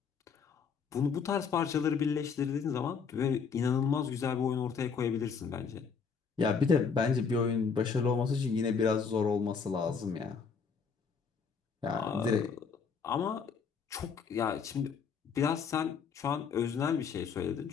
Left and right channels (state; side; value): quieter; right; 5.9 dB